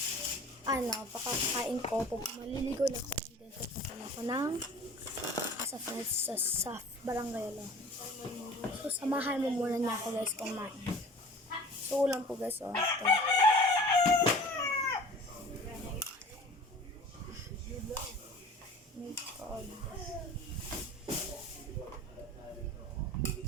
pakakain ko. Maliligo lang ako and then pupunta lang ako ng sa friends sa barangay lang. So, samahan mo muna niya ako guys kumain. So, ulam po guys. Ito. My God.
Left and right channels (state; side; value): normal; both; correlation 0.43